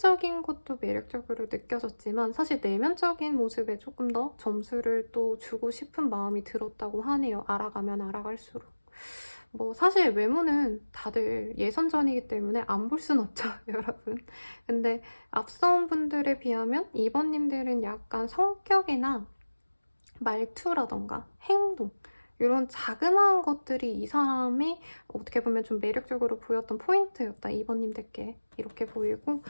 것도 매력적으로 느껴졌지만 사실 내면적인 모습에 조금 더 점수를 또 주고 싶은 마음이 들었다고 하네요. 알아가면 알아갈수록. 뭐 사실 외모는 다들 예선전이기 때문에 안 볼 순 없죠, 여러분. 근데 앞선 분들에 비하면 2번님들은 약간 성격이나 말투라던가 행동 이런 자그마한 것들이 이 사람이 어떻게 보면 좀 매력적으로 보였던 포인트였다, 2번님들께. 이렇게 보이고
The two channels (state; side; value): inverted; both; correlation -1.00